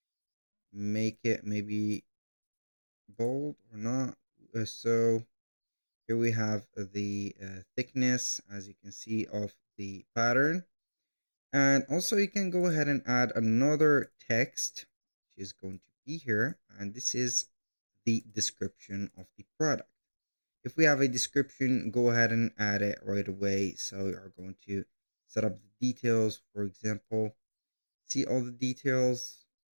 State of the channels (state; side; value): inverted; both; correlation -1.00